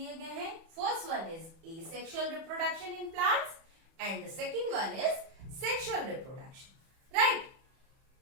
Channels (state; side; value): late; left; 31 ms